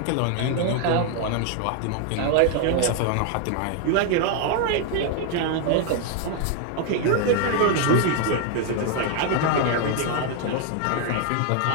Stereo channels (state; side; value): different; both; correlation 0.00